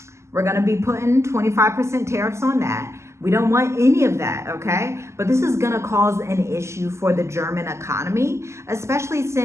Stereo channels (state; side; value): late; left; 0.13 ms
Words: We're gonna be putting 25% tariffs on that. We don't want any of that, okay? But this is gonna cause an issue for the German economy, especially